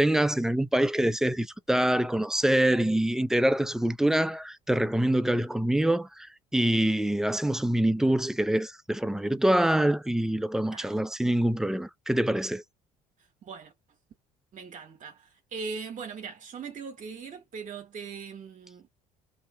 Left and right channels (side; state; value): both; normal; correlation 0.96